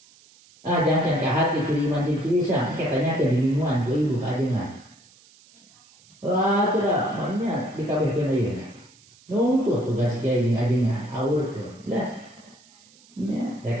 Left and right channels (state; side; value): noise; right; hiss, 27 dB below the sound